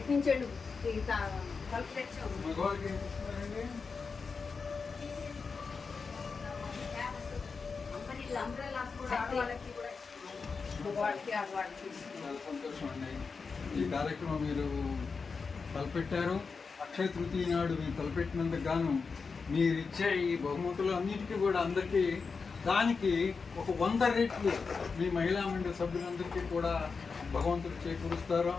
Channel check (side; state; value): right; quieter; 4.9 dB